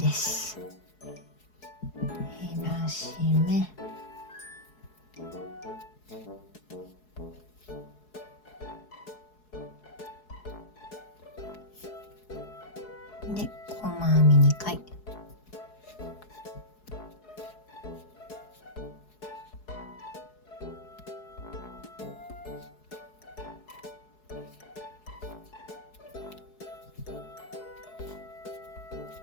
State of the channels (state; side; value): late; right; 4.7 ms